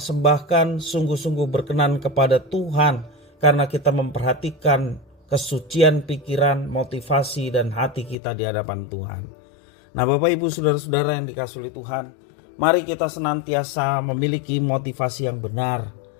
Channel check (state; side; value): drops out; right; at 8.2 s